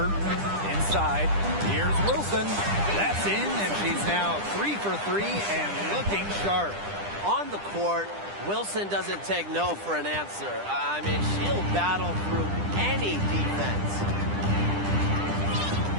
Inside. Here's Wilson. That's in, and she's now 3 for 3 and looking sharp. On the court, Wilson doesn't take no for an answer. I mean, she'll battle through any defense.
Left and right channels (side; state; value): left; late; 10 ms